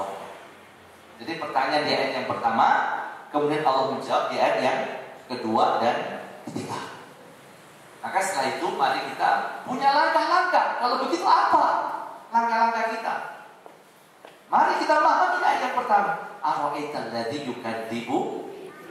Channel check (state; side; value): identical; both; correlation 1.00